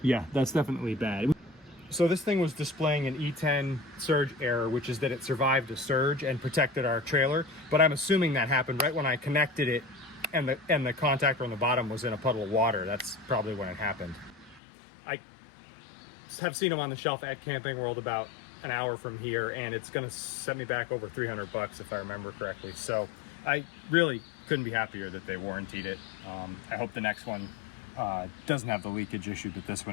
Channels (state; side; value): drops out; right; at 14.6 s